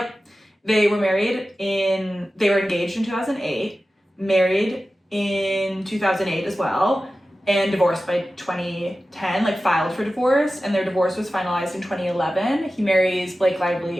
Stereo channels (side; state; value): both; normal; correlation 0.95